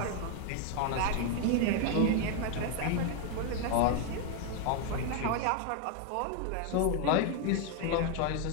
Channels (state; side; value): different; both; correlation 0.01